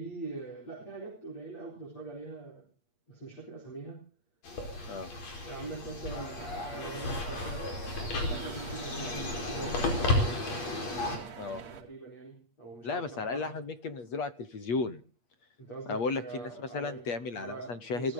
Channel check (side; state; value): right; late; 8.5 ms